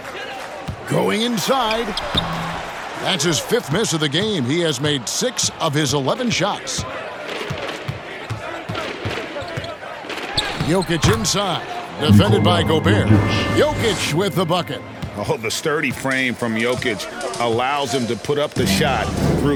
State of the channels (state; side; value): identical; both; correlation 1.00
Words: Going inside. That's his 5th miss of the game. He has made 6 of his 11 shots. Jokic inside. Defended by Gobert. Jokic with the bucket. Oh, the sturdy frame from Jokic allows him to put up the shot